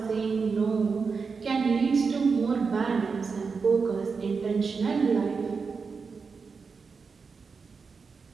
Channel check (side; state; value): left; quieter; 5.1 dB